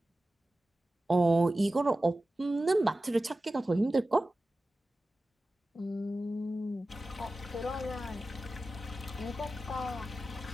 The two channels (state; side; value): normal; both; correlation 0.94